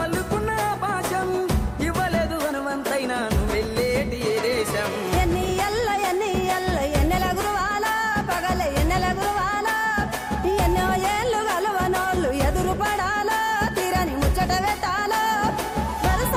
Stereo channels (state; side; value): identical; both; correlation 1.00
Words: అల్లుకున్న భాషం ఇవ్వలేదు హనుమంతైనా నువ్వు వెళ్ళేటి ఏ దేశం ఎన్నెల గురువాలా పగల ఎన్నెల గురువాలా ఎన్నో ఏళ్ళు గలవనోళ్ళు ఎదురు పడాలా తీరని ముచ్చట పెట్టాలా